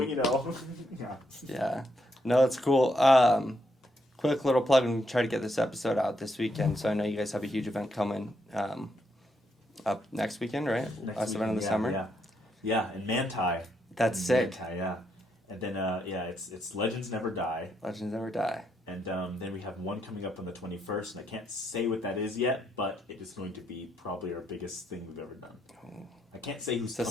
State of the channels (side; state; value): both; normal; correlation 0.77